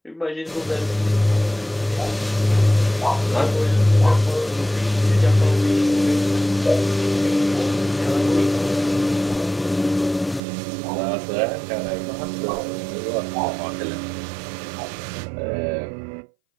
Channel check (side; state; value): left; drops out; at 10.4 s